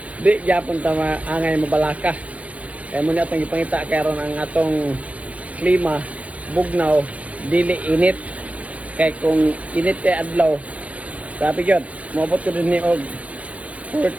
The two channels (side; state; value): left; late; 0.067 ms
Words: Di gyapon ta angay mabalaka. Kay mo ni atong gipangita karon ang atong klima bugnaw, dili init. Kay kung init kay adlaw, sabi gyud, moabot ko din ni og